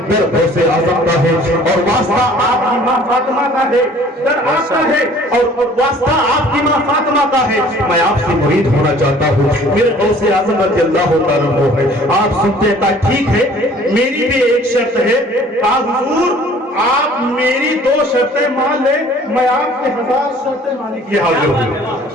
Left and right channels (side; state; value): both; normal; correlation 0.52